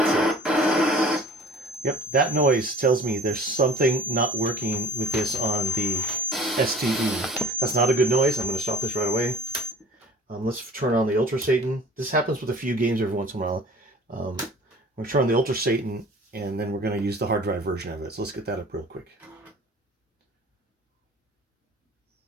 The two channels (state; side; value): normal; both; correlation 0.46